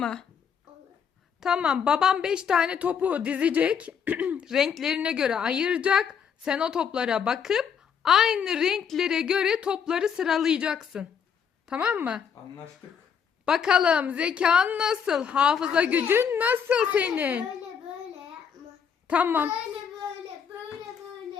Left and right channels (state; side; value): quieter; right; 7.2 dB